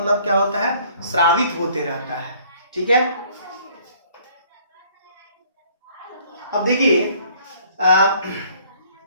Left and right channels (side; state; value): both; inverted; correlation -0.59